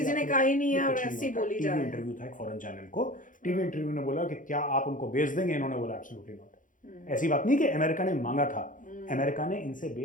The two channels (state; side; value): late; right; 0.38 ms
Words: ने कहा ही नहीं है और ऐसी बोली जा रही है। इंटरव्यू था एक फॉरेन चैनल को, टीवी इंटरव्यू ने बोला कि क्या आप उनको बेच देंगे? इन्होंने बोला एब्सोल्युटली नॉट। ऐसी बात नहीं कि अमेरिका ने मांगा था, अमेरिका ने इनसे